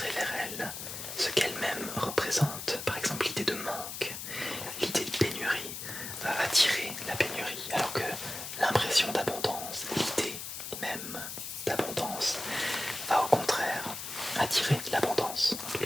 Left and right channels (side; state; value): left; noise; hiss, 7 dB below the sound